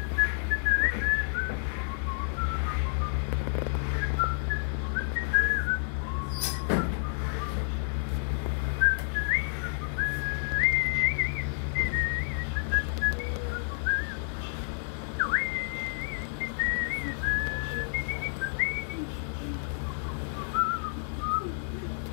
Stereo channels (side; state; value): right; silent; 58 dB below the other